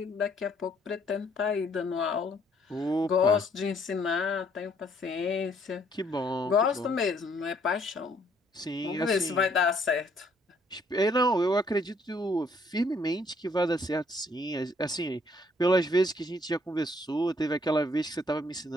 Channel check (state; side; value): normal; both; correlation 0.66